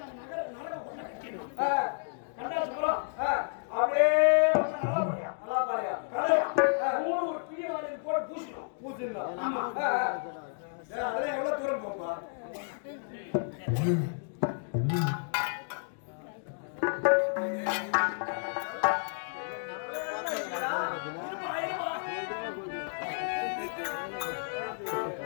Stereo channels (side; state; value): right; silent; digital silence